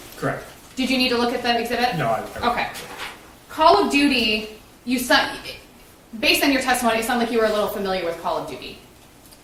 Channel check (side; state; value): both; identical; correlation 1.00